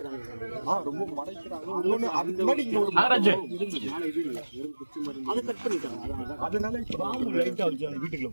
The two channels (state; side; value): inverted; both; correlation -1.00